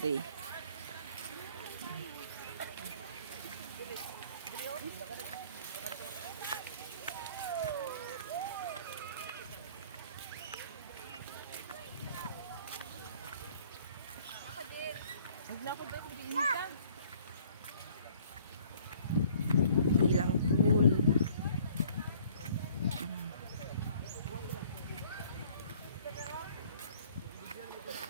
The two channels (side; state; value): both; inverted; correlation -0.56